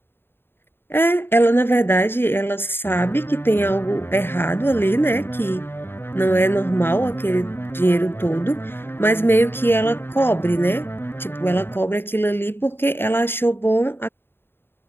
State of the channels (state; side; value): late; right; 0.11 ms